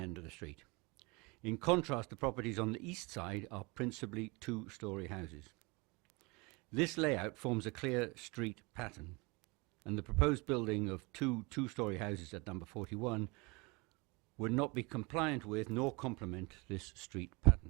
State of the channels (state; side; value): quieter; left; 27.1 dB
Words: of the street. In contrast, the properties on the east side are principally two-storey houses. This layout forms a clear street pattern, and the proposed building of two-storey houses at number 41 would not be compliant with nor complement this street